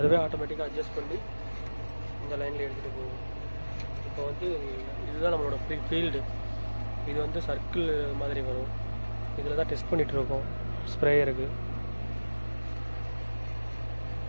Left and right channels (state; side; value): inverted; both; correlation -1.00